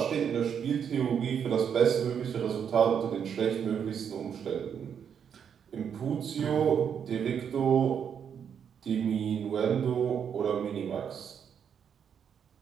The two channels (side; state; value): left; quieter; 7.8 dB